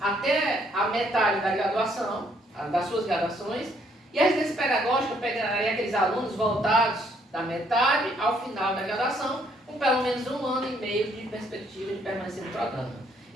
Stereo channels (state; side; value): normal; both; correlation 0.68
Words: até a metade da graduação, das suas graduações, e a residência pedagógica pegaria aqueles alunos voltados da metade ao final da graduação, com pelo menos 1 ano e meio de perspectiva de permanecer no programa.